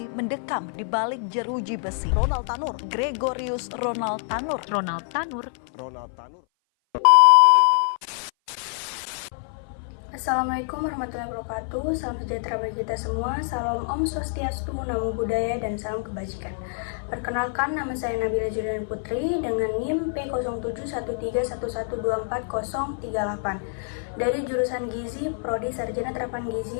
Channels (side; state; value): right; silent; 57 dB below the other